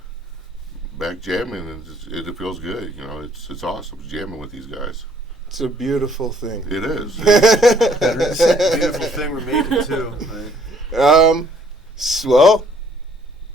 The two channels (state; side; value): normal; both; correlation 0.62